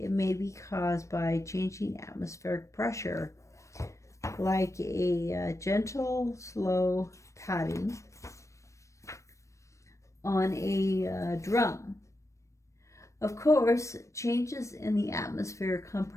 may be caused by changing atmospheric pressure, like a gentle, slow patting on a drum. Of course, changes in the atmosphere come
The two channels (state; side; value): late; right; 0.15 ms